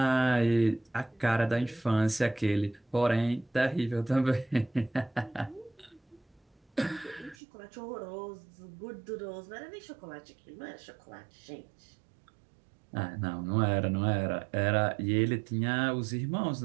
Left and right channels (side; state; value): left; drops out; at 7.4 s